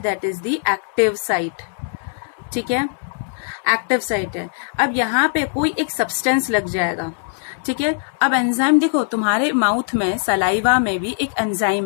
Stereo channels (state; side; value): silent; right; 65 dB below the other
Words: is the active site. ठीक है, एक्टिव साइट है। अब यहाँ पे कोई एक सब्सटेंस लग जाएगा, ठीक है। अब एंजाइम देखो, तुम्हारे माउथ में, सलाइवा में भी एक